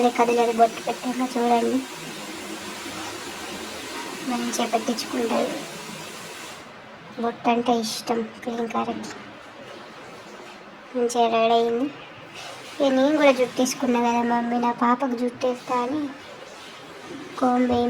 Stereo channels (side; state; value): both; identical; correlation 1.00